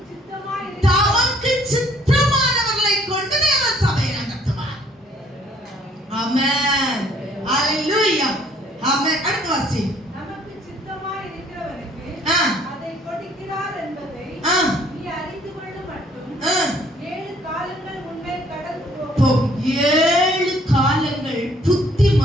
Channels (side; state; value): both; normal; correlation 0.61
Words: சித்தமாய் தமக்கு சித்தமானவர்களை கொண்டு தேவன் சபையை நடத்துவார். ஆமென். அல்லேலூயா. ஆமென். அடுத்த வாசி. நமக்கு சித்தமாய் இருக்கிறவனுக்கு அதை கொடுக்கிறார் என்பதை நீ அறிந்து கொள்ளும் மட்டும். 7 காலங்கள் உன்னை கடந்து போகும். 7 காலங்கள் புத்தி